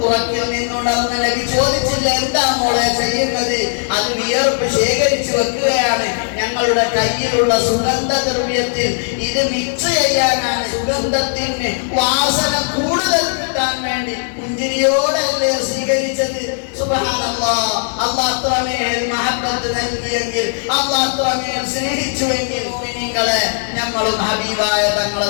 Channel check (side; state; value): right; silent; 65 dB below the other